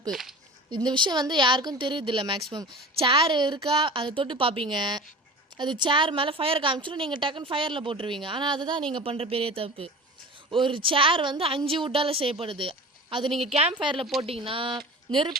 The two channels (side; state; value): both; normal; correlation 0.36